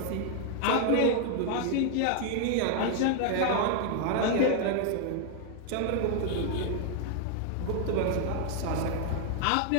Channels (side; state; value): both; different; correlation 0.00